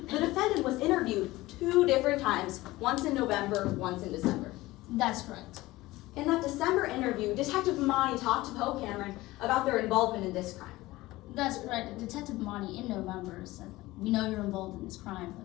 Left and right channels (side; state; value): right; quieter; 18.7 dB